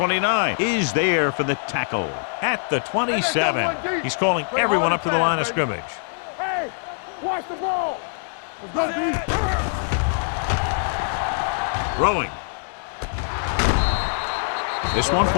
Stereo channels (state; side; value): silent; right; digital silence